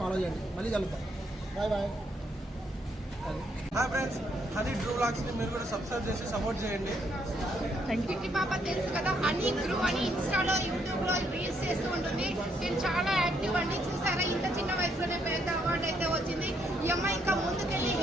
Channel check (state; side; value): normal; both; correlation 0.73